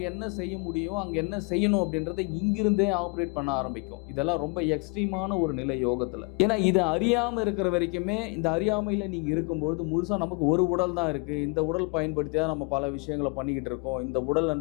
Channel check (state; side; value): quieter; right; 32.1 dB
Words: என்ன செய்ய முடியும், அங்க என்ன செய்யணும் அப்படின்றத இங்கிருந்தே ஆப்ரேட் பண்ண ஆரம்பிக்கும். இதெல்லாம் ரொம்ப எக்ஸ்ட்ரீமான ஒரு நிலை யோகத்துல. ஏன்னா இதை அறியாம இருக்கிற வரைக்குமே, இந்த அறியாமையில நீங்க இருக்கும்போது முழுசா நமக்கு ஒரு உடல் தான் இருக்கு, இந்த உடல் பயன்படுத்தியா நம்ம பல விஷயங்களை பண்ணிக்கிட்டு இருக்கோம், இந்த